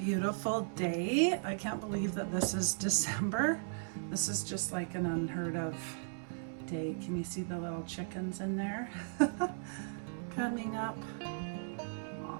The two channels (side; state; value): left; silent; digital silence